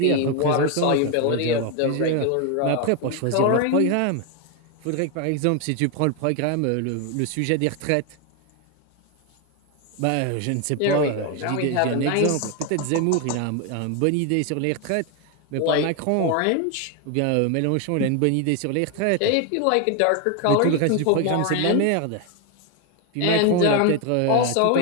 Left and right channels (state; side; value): different; both; correlation 0.01